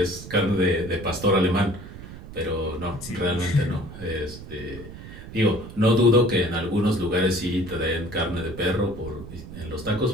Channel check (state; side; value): noise; right; rumble, 13 dB below the sound